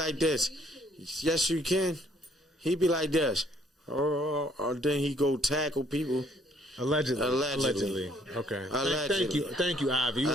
this. Yes, you can. He be like this. Or then he go tackle people. Allegedly. Okay. Allegedly. Thank you, Ivy. We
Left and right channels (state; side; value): normal; both; correlation 0.64